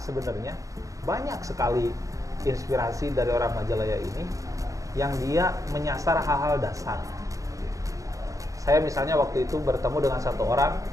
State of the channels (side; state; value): left; late; 0.16 ms